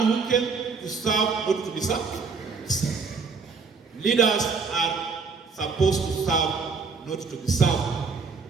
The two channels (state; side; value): quieter; left; 4.9 dB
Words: who came to serve, not to be served. Leaders are supposed to serve, not to be served.